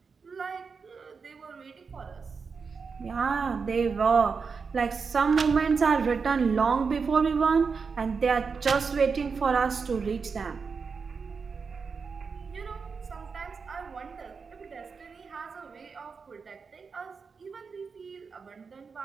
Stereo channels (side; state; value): left; quieter; 5.3 dB